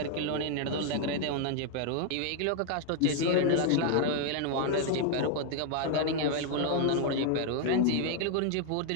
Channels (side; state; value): both; different; correlation 0.00